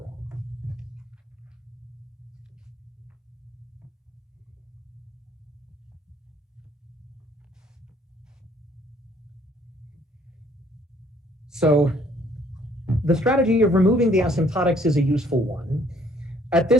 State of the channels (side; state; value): both; normal; correlation 0.62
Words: So the strategy of removing the asymptotics is a useful one. At